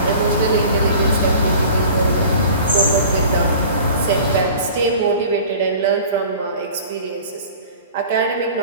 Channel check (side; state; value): both; inverted; correlation -0.43